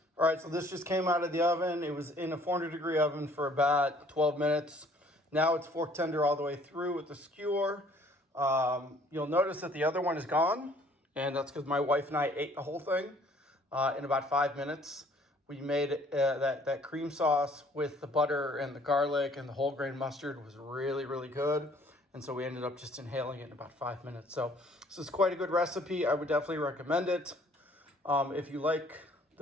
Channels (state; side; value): normal; both; correlation 0.58